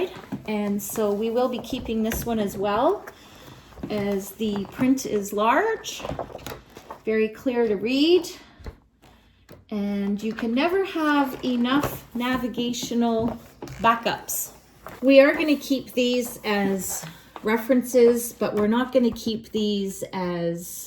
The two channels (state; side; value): identical; both; correlation 1.00